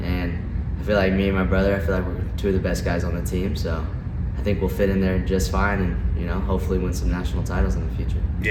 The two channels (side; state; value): both; identical; correlation 1.00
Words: And I feel like me and my brother, I feel like we're 2 of the best guys on the team, so I think we'll fit in there just fine, and hopefully win some national titles in the future.